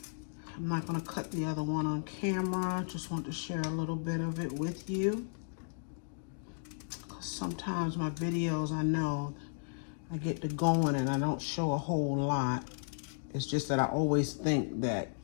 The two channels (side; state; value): right; silent; digital silence